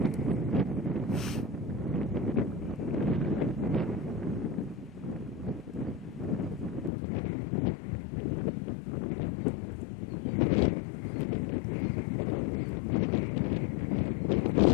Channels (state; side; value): drops out; right; at 6.9 s